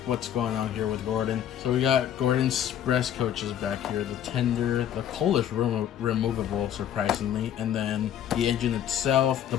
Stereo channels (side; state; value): right; quieter; 10.2 dB